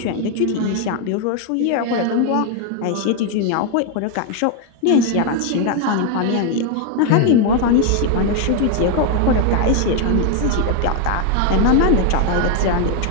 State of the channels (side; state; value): both; different; correlation 0.01